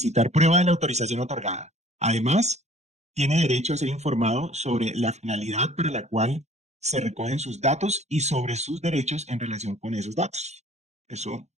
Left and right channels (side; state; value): left; late; 0.33 ms